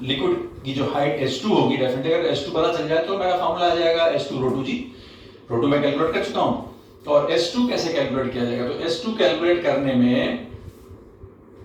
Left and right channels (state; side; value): identical; both; correlation 1.00